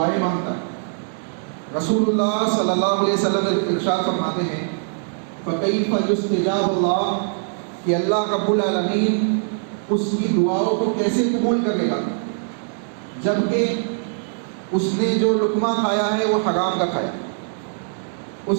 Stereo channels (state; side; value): silent; left; digital silence